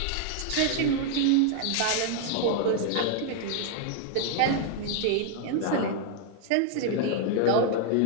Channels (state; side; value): different; both; correlation 0.00